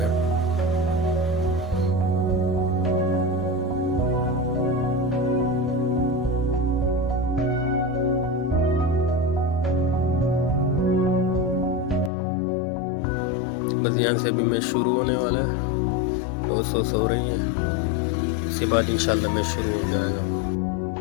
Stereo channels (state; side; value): drops out; right; at 12.1 s